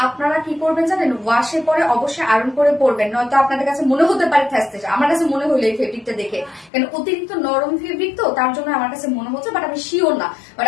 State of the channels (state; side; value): drops out; right; at 6.7 s